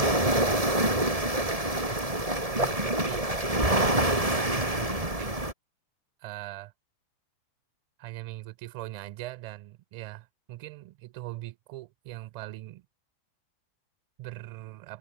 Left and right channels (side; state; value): left; late; 1.7 ms